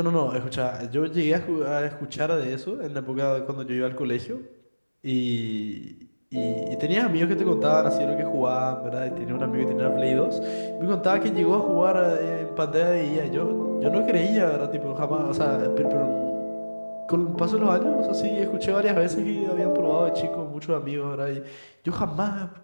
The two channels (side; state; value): both; inverted; correlation -1.00